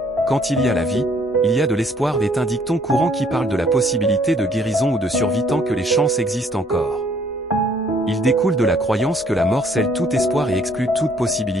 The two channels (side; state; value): both; normal; correlation 0.62